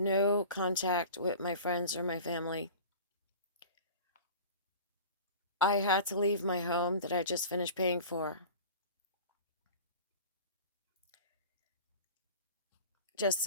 contact with my friends or my family. I had to leave my home that I just finished paying for, just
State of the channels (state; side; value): inverted; both; correlation -0.39